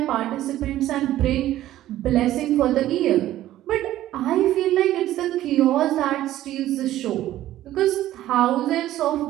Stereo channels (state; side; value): quieter; left; 13.9 dB